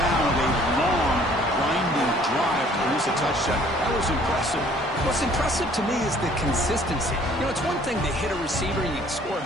with a long, grinding drive to produce a touchdown. That was impressive. What's impressive to me is the consistency. You know, it's one thing to hit a receiver and you can score a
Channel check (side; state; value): both; normal; correlation 0.57